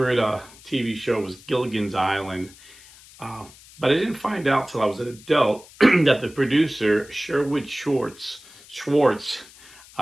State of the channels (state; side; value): noise; left; hiss, 22 dB below the sound